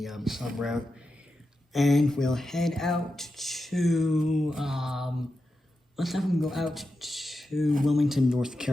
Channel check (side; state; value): both; normal; correlation 0.90